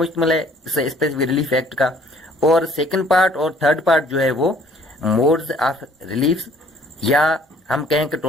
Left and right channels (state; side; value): normal; both; correlation 0.58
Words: है स्पेसिफिक रिलीफ एक्ट का, और सेकंड पार्ट और थर्ड पार्ट जो है वो मोड्स ऑफ रिलीफ, या हम कहें कि